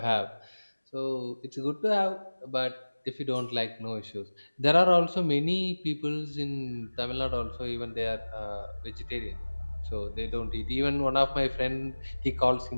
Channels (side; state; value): both; inverted; correlation -1.00